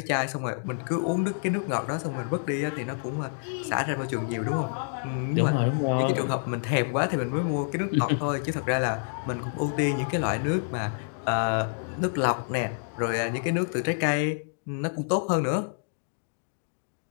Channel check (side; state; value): right; silent; digital silence